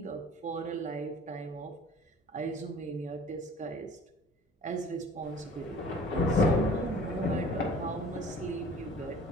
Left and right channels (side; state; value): both; normal; correlation 0.47